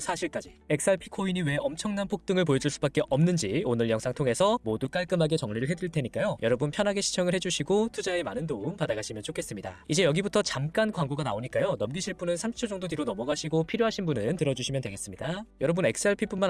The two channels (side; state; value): both; identical; correlation 1.00